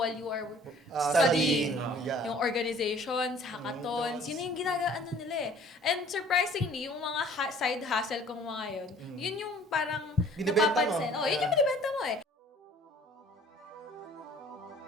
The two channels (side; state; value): both; normal; correlation 0.53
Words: you are studying? Yeah. Yung organizations, hackathons, yun yung ginagaano nila eh. And surprisingly, yung mga side hustle kong mga yun yung parang Binibenta mo. napapansin. Oh, yun yung binibenta mo eh.